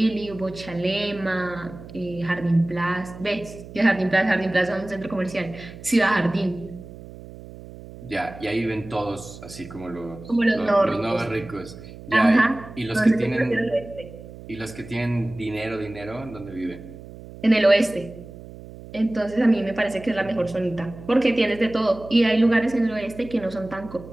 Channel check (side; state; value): right; noise; hum, 16 dB below the sound